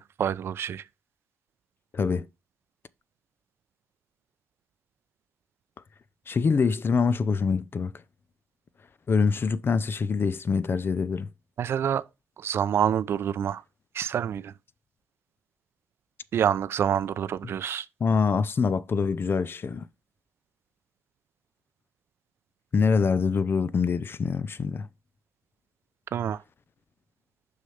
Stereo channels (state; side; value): normal; both; correlation 0.74